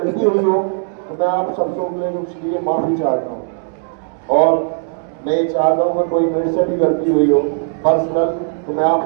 हुई हो तो मैं आप सबसे उसके लिए माफी चाहता हूँ। और मैं ये चाहता हूँ कि कोई मेरे से भी गलती हुई हो पर्सनल, तो मैं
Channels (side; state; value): left; silent; 68 dB below the other